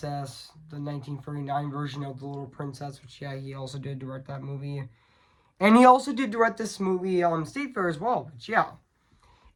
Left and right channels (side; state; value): both; identical; correlation 1.00